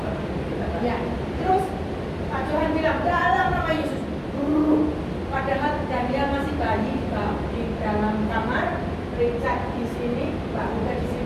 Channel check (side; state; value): both; identical; correlation 1.00